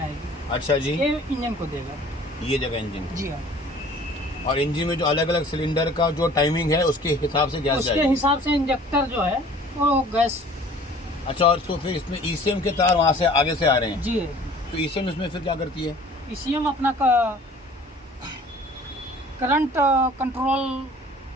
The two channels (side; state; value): both; normal; correlation 0.50